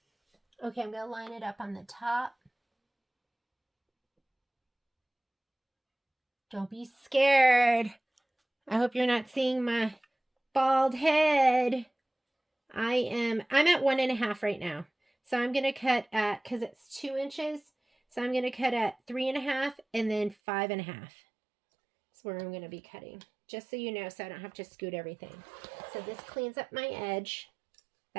Okay, I'm going to line it up on the top. Don't be scared. I hope you're not seeing my bald head. I'm at 1.5 right now. So I'm going to cut at, because it's 2 inches, so I'm going to cut at 3.5 and then 5.5. That's where I'm going to be cutting. Just so you know, so I don't have to scoot everything. So this cleans up my edge.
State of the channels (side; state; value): left; drops out; at 20.4 s